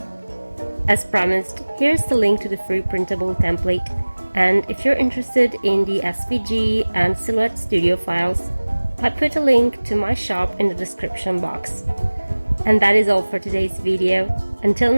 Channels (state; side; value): inverted; both; correlation -1.00